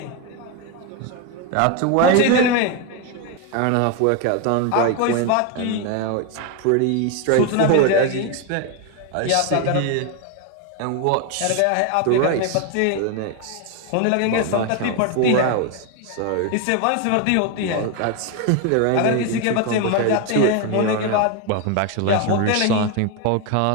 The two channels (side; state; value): both; different; correlation 0.02